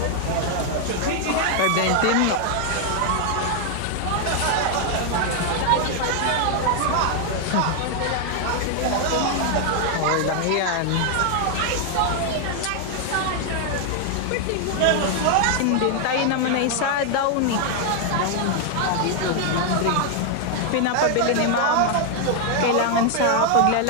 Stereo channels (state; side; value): different; both; correlation 0.00